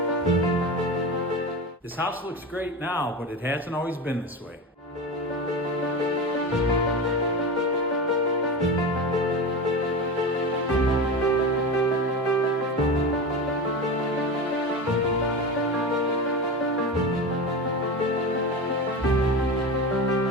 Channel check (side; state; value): both; normal; correlation 0.24